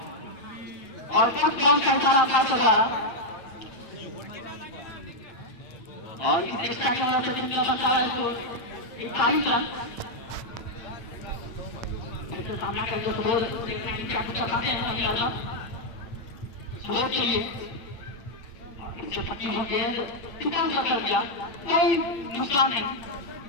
और फर्स्ट बॉल का इशारा अपार के द्वारा और इस एक्स्ट्रा की वजह से टीम का बनता है इसको 41 रन से सामना करके सुबोध क्या कुछ करते हैं सुबोध चाहिए इससे पट्टी हो गेंद किसान कर दिया, कोई नुकसान नहीं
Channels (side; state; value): right; late; 8.7 ms